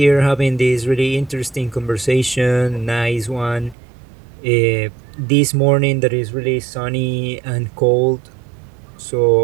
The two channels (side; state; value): left; drops out; at 3.8 s